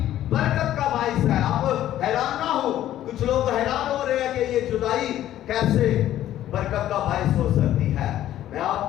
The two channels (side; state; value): right; quieter; 12.7 dB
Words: برکت کا باعث ہے. اب حیران نہ ہو, کچھ لوگ حیران ہو رہے ہیں کہ یہ جدائی کیسے برکت کا باعث ہو سکتی ہے. میں آپ